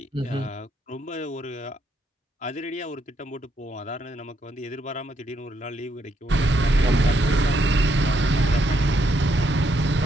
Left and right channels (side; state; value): both; normal; correlation 0.76